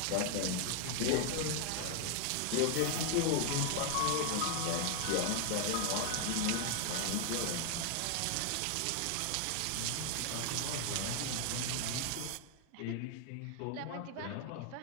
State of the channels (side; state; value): both; different; correlation 0.00